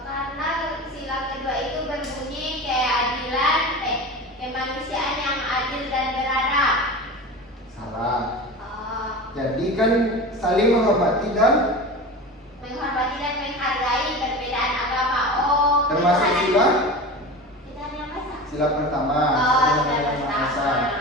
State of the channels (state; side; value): normal; both; correlation 0.30